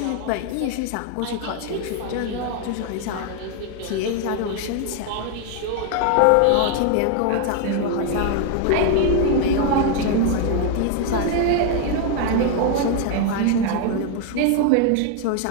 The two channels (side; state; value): both; different; correlation 0.01